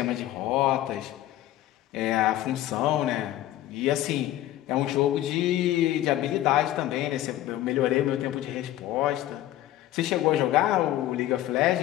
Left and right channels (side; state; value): right; quieter; 14.0 dB